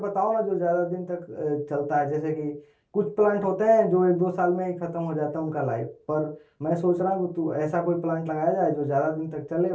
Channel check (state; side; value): identical; both; correlation 1.00